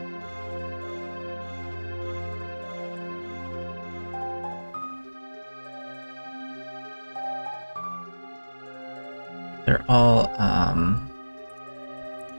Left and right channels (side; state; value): both; inverted; correlation -1.00